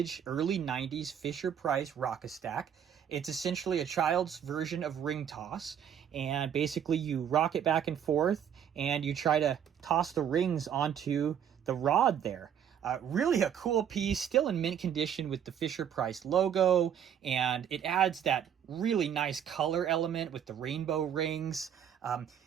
early 90s Fisher-Price Rock-a-Stack. It's essentially a child's version of ring toss, and basically you rock it back and forth and you try to toss the rings onto the rod there. Really a cool piece, still in mint condition with the Fisher Price logo, and it adds that really nice color element with the rainbow rings.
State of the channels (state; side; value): quieter; left; 8.9 dB